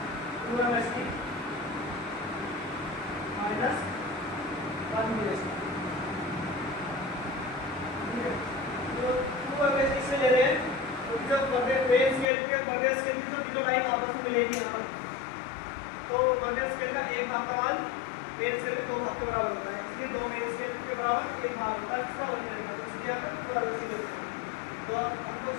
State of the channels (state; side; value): drops out; right; at 12.2 s